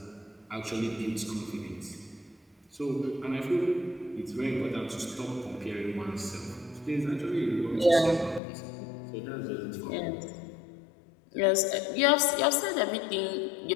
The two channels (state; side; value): drops out; right; at 8.4 s